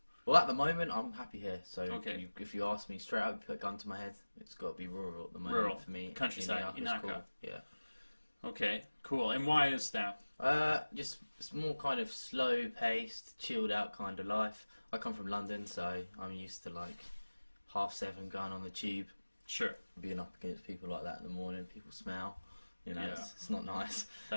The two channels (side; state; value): both; inverted; correlation -1.00